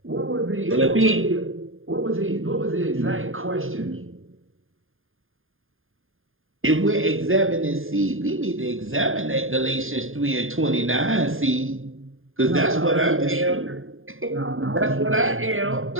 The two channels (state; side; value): late; left; 0.59 ms